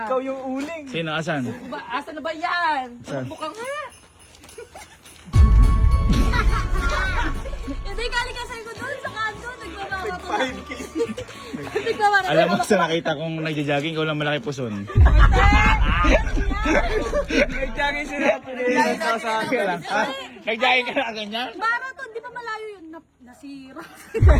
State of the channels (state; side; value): identical; both; correlation 1.00